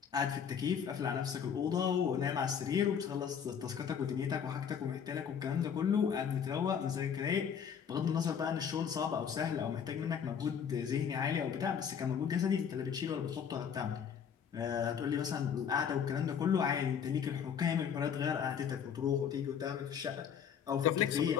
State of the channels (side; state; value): right; quieter; 7.6 dB